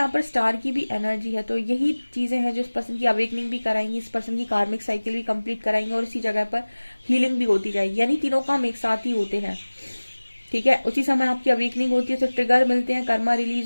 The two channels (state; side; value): inverted; both; correlation -1.00